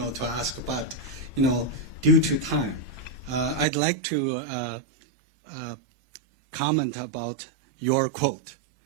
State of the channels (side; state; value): left; drops out; at 3.7 s